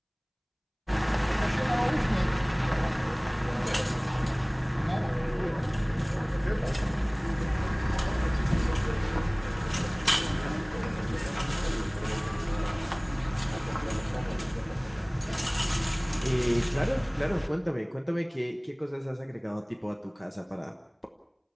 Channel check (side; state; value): both; identical; correlation 1.00